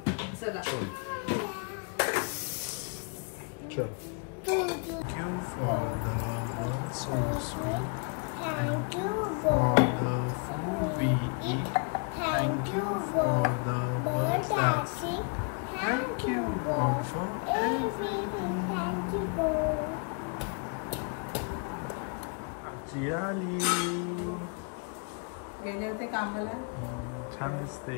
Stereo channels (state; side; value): quieter; right; 37.4 dB